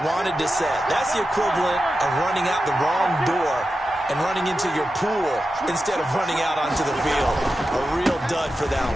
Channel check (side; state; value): both; normal; correlation 0.91